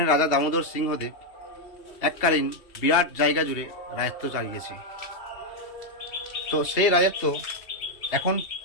রাজা দামোদর সিংহদেব এককালীন বিরাট জায়গা জুড়ে রাজত্ব চালিয়েছে। তো সেই রাজত্ব এখন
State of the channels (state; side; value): late; right; 2.8 ms